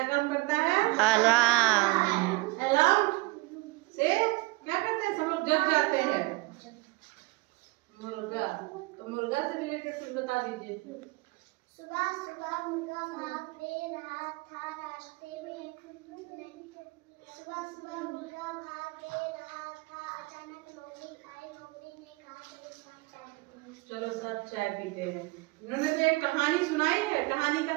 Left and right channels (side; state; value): left; quieter; 24.1 dB